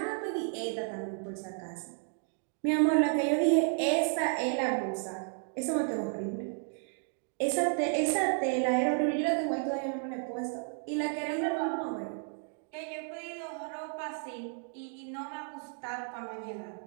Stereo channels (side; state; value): left; silent; 55 dB below the other